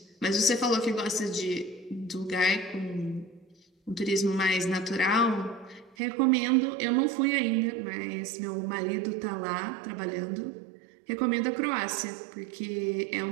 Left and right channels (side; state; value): left; drops out; at 6.0 s